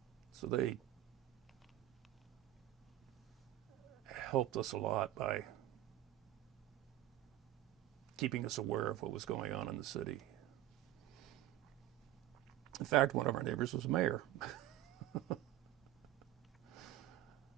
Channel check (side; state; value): left; quieter; 13.9 dB